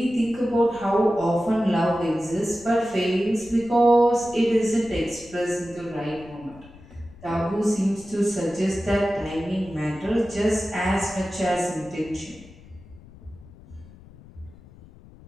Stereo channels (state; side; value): noise; left; rumble, 21 dB below the sound